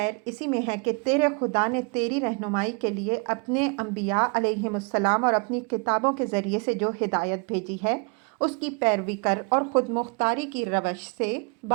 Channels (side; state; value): left; quieter; 33.4 dB